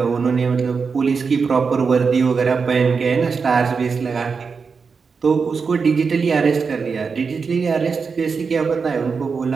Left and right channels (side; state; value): left; quieter; 5.3 dB